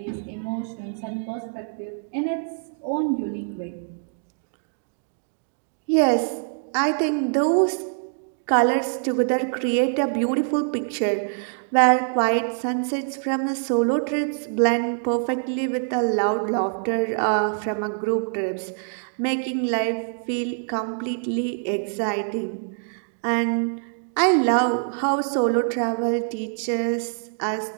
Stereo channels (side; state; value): left; silent; digital silence